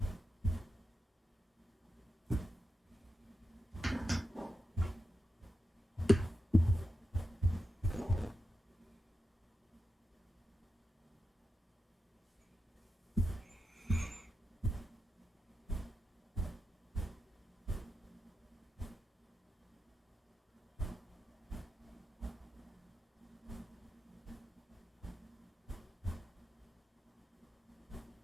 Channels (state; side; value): normal; both; correlation 0.88